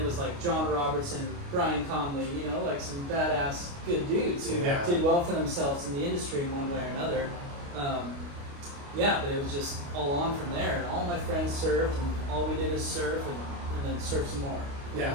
was like John Robertson, Brian Conley, like some badass good dudes who Yeah. did well for themselves in the industry in one way or another. Yeah, but it was just all on from there, and all my friends surfed, and all we did is surf, and then surf some more. Yeah.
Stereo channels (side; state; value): left; late; 29 ms